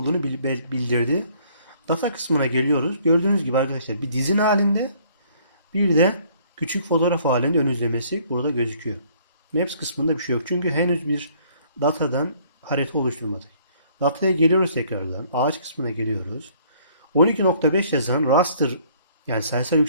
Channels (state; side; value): inverted; both; correlation -0.61